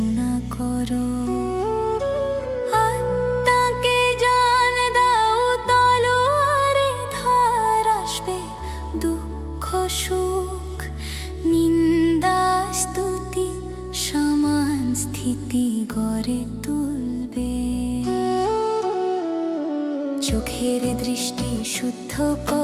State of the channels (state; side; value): identical; both; correlation 1.00